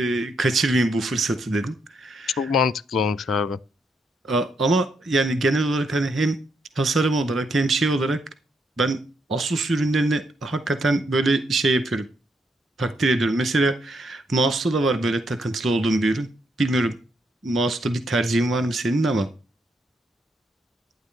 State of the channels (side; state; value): both; normal; correlation 0.77